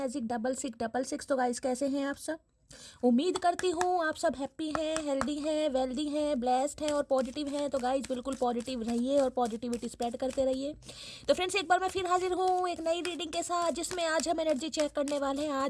6666। तो गाइस कैसे हैं आप सब? उम्मीद करती हूँ आप सब हैप्पी हैं, हेल्दी हैं, वेल्दी हैं, ब्लेस्ड हैं और पॉजिटिव हैं। तो गाइस बिल्कुल पॉजिटिव रहिए और पॉजिटिविटी स्प्रेड करते रहिए। तो फ्रेंड्स एक बार मैं फिर हाजिर हूँ एक नई रीडिंग के साथ, जिसमें आज हम एनर्जी चेक करने वाले हैं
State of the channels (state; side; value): identical; both; correlation 1.00